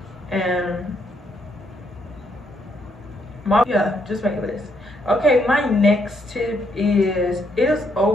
And just make a list. Okay, my next tip is it is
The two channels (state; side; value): normal; both; correlation 0.74